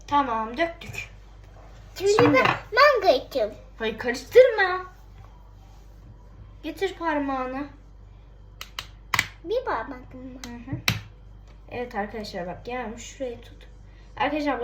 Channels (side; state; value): both; identical; correlation 1.00